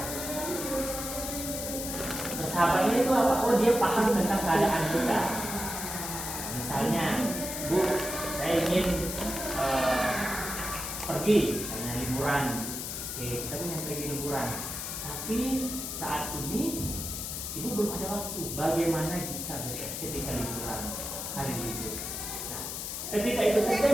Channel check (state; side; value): noise; left; hiss, 5 dB below the sound